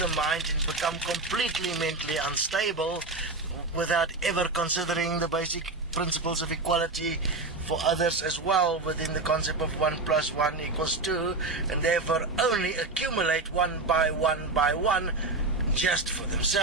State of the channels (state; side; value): quieter; left; 3.4 dB